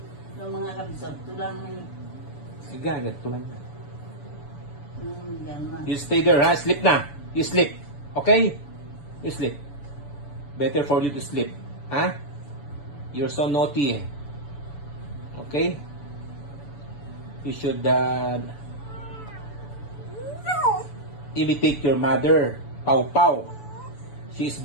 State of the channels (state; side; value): late; right; 7.0 ms